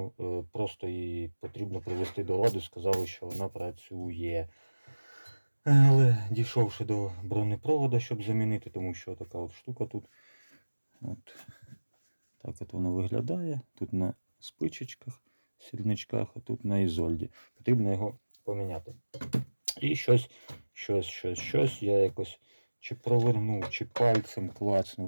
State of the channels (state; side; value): inverted; both; correlation -1.00